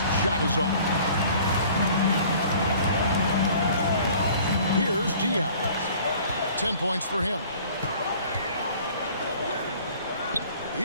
shot is off. Here's Diaz. 10 points for him.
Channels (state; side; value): inverted; both; correlation -0.50